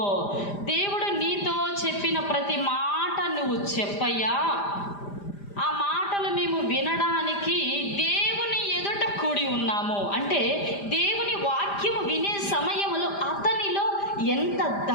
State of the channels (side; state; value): right; late; 5.0 ms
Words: దేవుడు నీతో చెప్పిన ప్రతి మాట నువ్వు చెప్పయ్యా. ఆ మాటలు మేము వినడానికి దేవుని ఎదుట కూడి ఉన్నాము. అంటే దేవుని వాక్యము వినే సమయంలో అతనిలో ఎంత